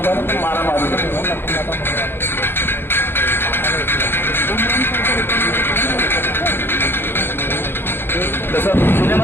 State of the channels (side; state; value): right; late; 0.10 ms